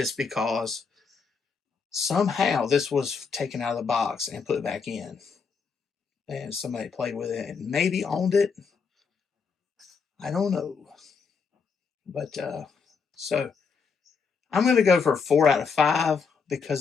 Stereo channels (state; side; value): quieter; right; 5.5 dB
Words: because somehow this was taken out of the box and put back in. And somebody played with it and maybe owned it. I don't know. But so I'm going to go for 4 out of 5